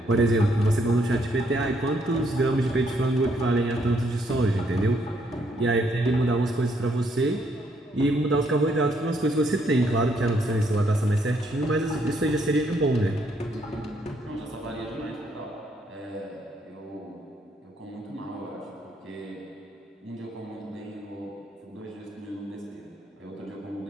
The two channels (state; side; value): normal; both; correlation 0.71